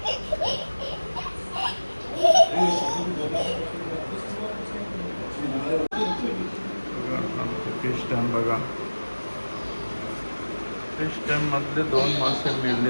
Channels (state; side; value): inverted; both; correlation -1.00